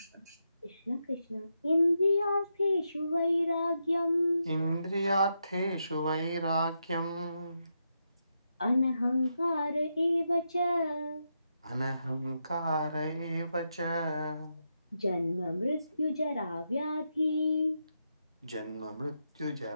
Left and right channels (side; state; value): both; inverted; correlation -0.84